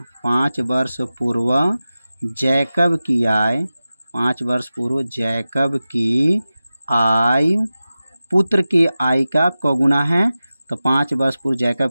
5 वर्ष पूर्व जैकब की आय, 5 वर्ष पूर्व जैकब की आय पुत्र की आय का कौगुना है, तो 5 वर्ष पूर्व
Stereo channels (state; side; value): inverted; both; correlation -0.95